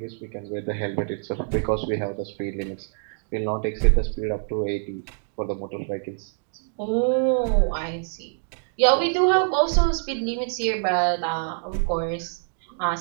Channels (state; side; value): silent; left; digital silence